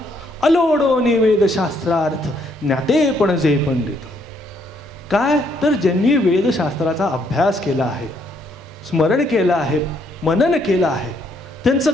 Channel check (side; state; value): both; normal; correlation 0.70